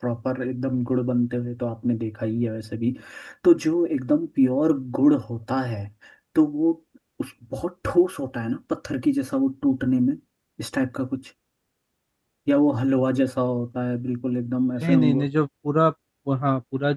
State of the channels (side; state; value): both; identical; correlation 1.00